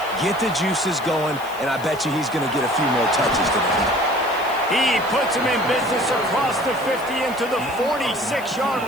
get the juices going, and I bet you he's going to get a few more touches today. He puts him in business across the 50 into the 46-yard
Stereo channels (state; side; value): noise; left; hiss, 19 dB below the sound